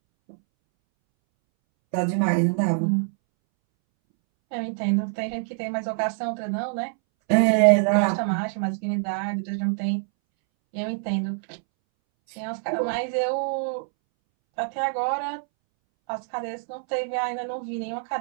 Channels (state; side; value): silent; left; 62 dB below the other